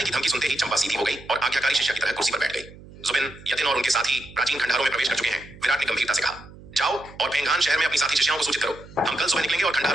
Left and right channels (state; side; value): noise; right; hum, 19 dB below the sound